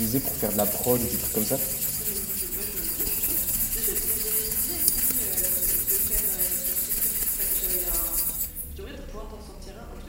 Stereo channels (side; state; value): both; identical; correlation 1.00